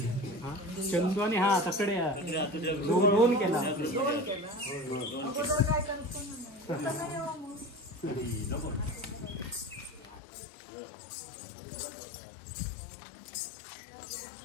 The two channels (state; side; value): drops out; right; at 10.2 s